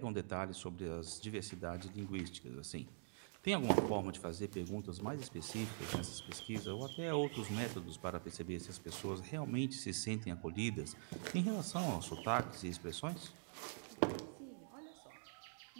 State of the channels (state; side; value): silent; left; digital silence